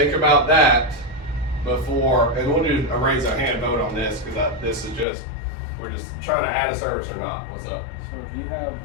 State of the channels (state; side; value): drops out; right; at 5.1 s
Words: about that before, and we'll do a raise our hand vote on this because this is just, we're just trying to add a service or not. What's up? So if you have,